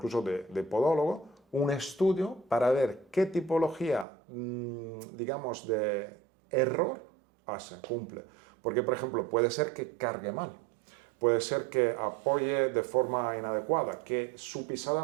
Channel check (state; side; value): drops out; left; at 4.0 s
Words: de podólogo, un estudio para ver qué tipología, digamos, de error cumple. Porque, por ejemplo, puede ser que cargue mal, puede ser que apoye de forma inadecuada, que su pisada